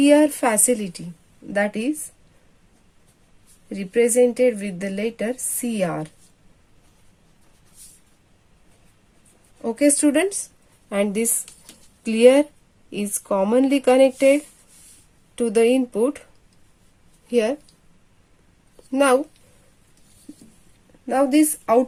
facility, that is represented with the letter CR. Okay students, and this clear is commonly connected to the input here. Now this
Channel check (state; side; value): identical; both; correlation 1.00